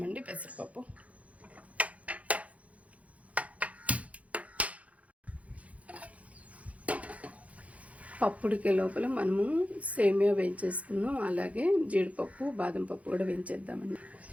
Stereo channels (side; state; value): left; late; 0.066 ms